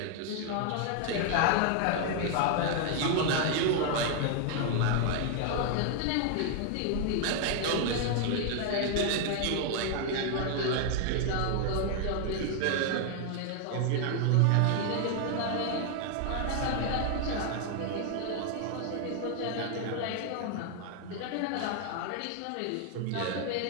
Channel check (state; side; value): different; both; correlation 0.00